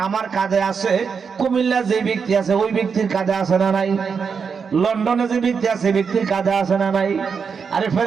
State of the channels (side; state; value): left; quieter; 6.0 dB